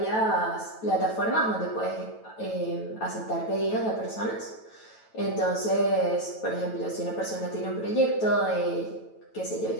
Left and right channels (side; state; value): right; late; 9.1 ms